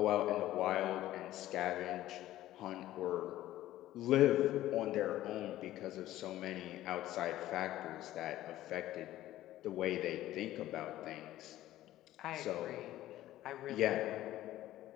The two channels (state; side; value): quieter; right; 14.5 dB